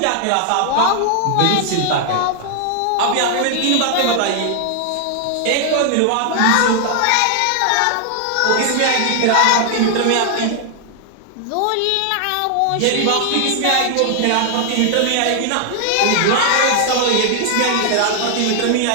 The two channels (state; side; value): different; both; correlation 0.00